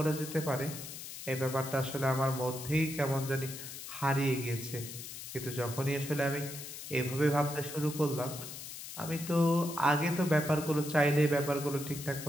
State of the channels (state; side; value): noise; left; hiss, 10 dB below the sound